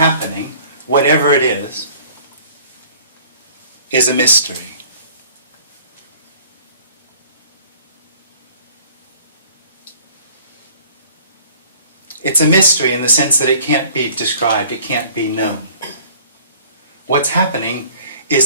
whatever it is a mystery. It's a mystery in the sense that it can't be described, it can't be known. What's happening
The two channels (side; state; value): both; inverted; correlation -0.51